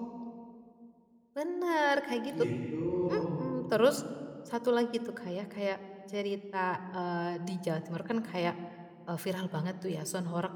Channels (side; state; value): both; identical; correlation 1.00